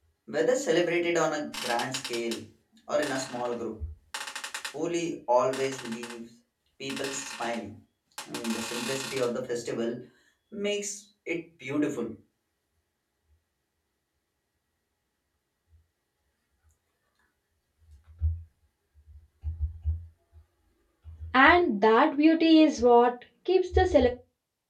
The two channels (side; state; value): both; identical; correlation 1.00